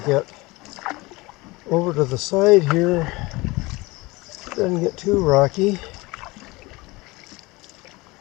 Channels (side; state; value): right; quieter; 22.8 dB